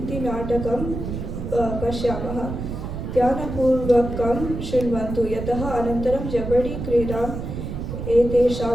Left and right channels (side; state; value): right; noise; rumble, 6 dB below the sound